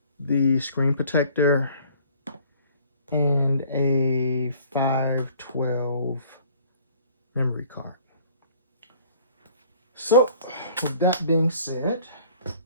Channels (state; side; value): inverted; both; correlation -0.54